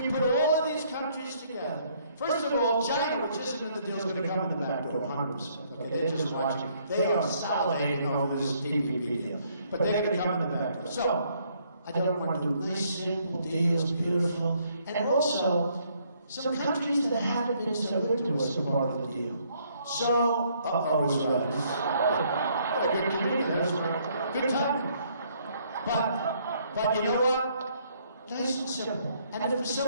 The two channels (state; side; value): inverted; both; correlation -0.67